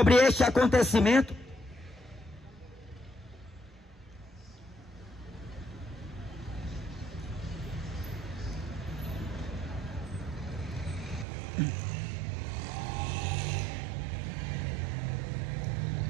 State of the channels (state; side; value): drops out; left; at 11.2 s